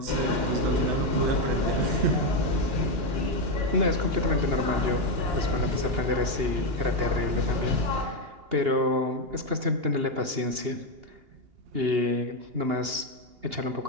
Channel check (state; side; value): late; left; 2.8 ms